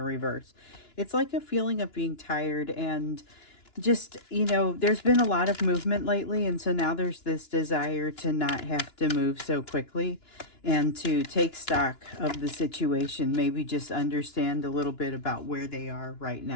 reverse. It's like a feeling of being tired and just, you know, there's been a lot of movement lately, and so now there's this desire to not have to move so quickly and to take stock of the situation, maybe just understand a little bit about where they are right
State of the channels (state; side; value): late; right; 2.9 ms